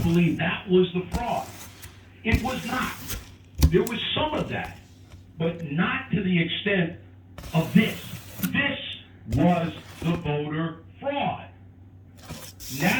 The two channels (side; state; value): both; identical; correlation 1.00